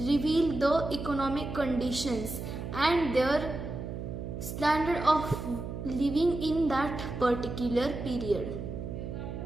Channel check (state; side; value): noise; right; hum, 7 dB below the sound